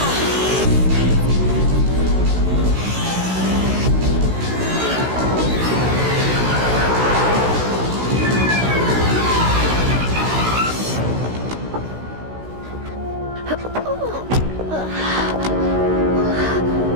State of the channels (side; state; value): left; late; 16 ms